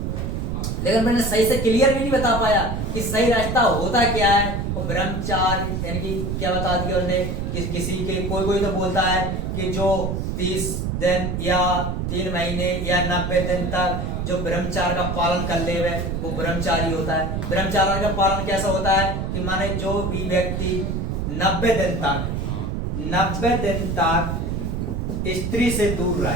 लेकिन मैंने सही से क्लियर भी नहीं बता पाया कि सही रास्ता होता क्या है। वो ब्रह्मचार्य यानी कि क्या बता दिया उन्होंने कि किसी के कोई तो बोलता है कि जो 30 दिन या 3 महीने या 90 दिन तक जो ब्रह्मचार्य का पालन कर ले वो ब्रह्मचारी होता है। ब्रह्मचार्य का पालन कैसा होता है कि माने जो भी व्यक्ति 90 दिन तक स्त्री से दूर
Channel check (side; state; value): right; noise; rumble, 2 dB below the sound